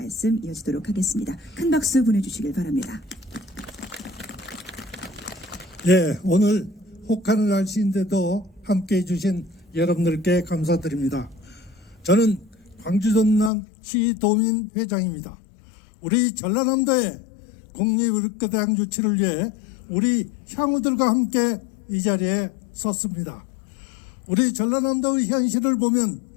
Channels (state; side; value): drops out; right; at 13.5 s